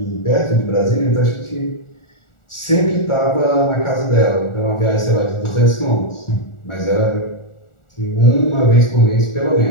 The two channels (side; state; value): right; late; 1.4 ms